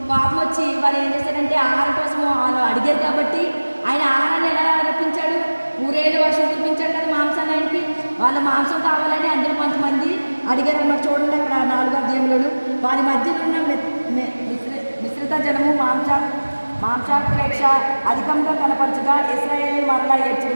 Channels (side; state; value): both; inverted; correlation -1.00